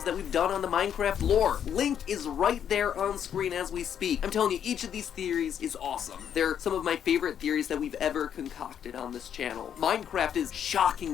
that we've done on the Minecraft lore. Link is right there on screen as we speak. I'm telling you, each of these theories is awesome. They're some of my favorite theories that we've ever concocted on this channel. Minecraft is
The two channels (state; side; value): quieter; right; 8.9 dB